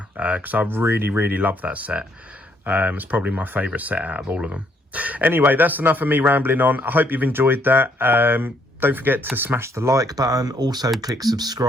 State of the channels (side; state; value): both; normal; correlation 0.69